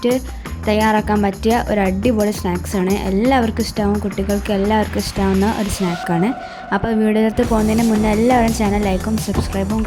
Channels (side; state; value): both; identical; correlation 1.00